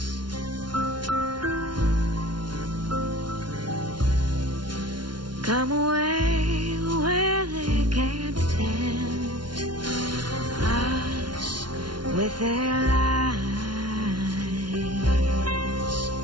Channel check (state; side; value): late; left; 0.71 ms